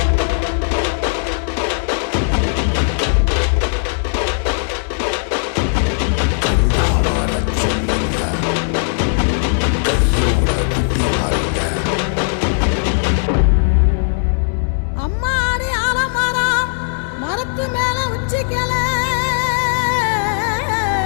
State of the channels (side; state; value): right; silent; 68 dB below the other